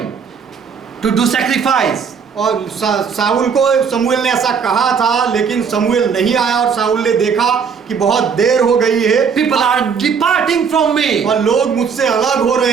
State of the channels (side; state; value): left; quieter; 6.3 dB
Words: to do sacrifice. और साउल को शमूएल ने ऐसा कहा था, लेकिन शमूएल नहीं आया और साउल ने देखा कि बहुत देर हो गई है, People are departing from me. और लोग मुझसे अलग हो